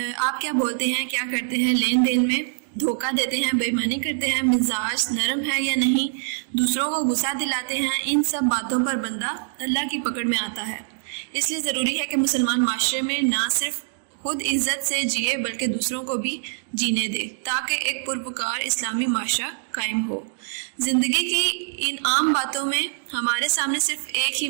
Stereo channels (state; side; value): silent; left; digital silence